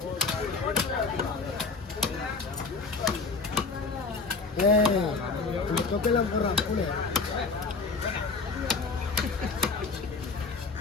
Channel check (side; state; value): right; quieter; 4.2 dB